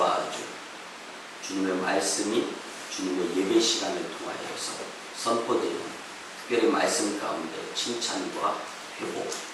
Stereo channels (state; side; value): identical; both; correlation 1.00